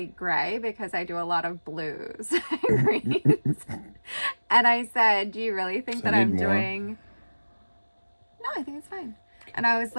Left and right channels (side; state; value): both; inverted; correlation -1.00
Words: gray because I do a lot of blues and greens. And I said, "Do you really think that I'm doing?" No, I think it's fine. And I was